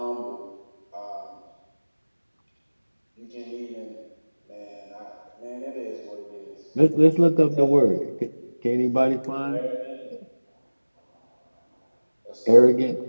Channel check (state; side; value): inverted; both; correlation -1.00